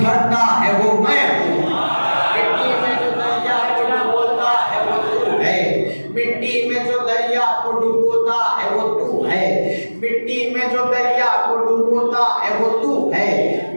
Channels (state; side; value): inverted; both; correlation -1.00